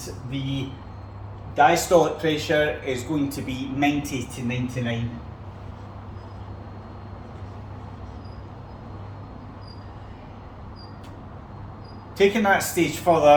the diastolic pressure is going to be 90 to 99. Taking that stage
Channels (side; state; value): both; identical; correlation 1.00